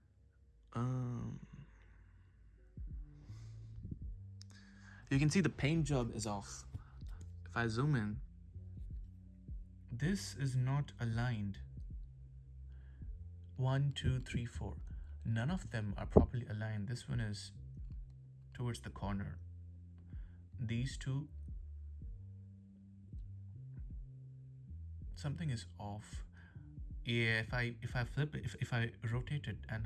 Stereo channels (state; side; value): identical; both; correlation 1.00